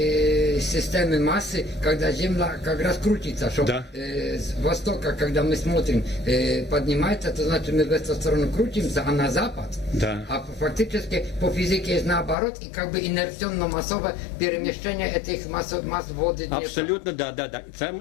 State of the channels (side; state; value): right; drops out; at 12.4 s